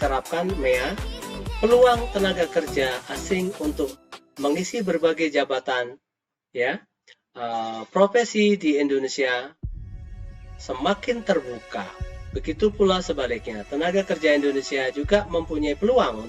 MEA, peluang tenaga kerja asing untuk mengisi berbagai jabatan ya profesi di Indonesia semakin terbuka. Begitu pula sebaliknya, tenaga kerja Indonesia juga mempunyai peluang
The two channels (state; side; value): identical; both; correlation 1.00